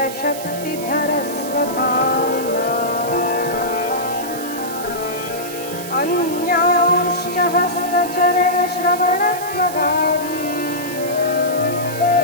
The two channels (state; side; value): noise; right; hiss, 12 dB below the sound